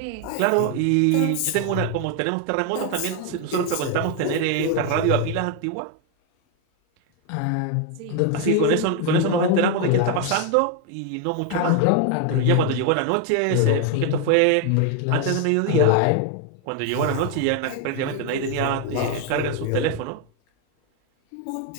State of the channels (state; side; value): different; both; correlation 0.01